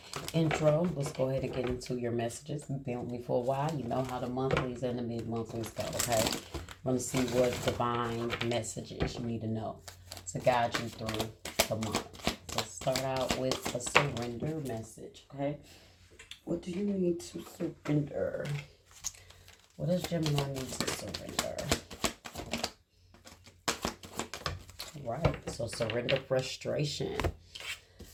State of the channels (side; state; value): both; identical; correlation 1.00